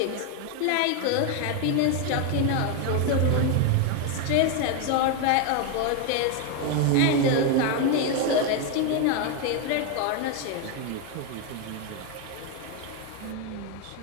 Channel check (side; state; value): both; different; correlation 0.02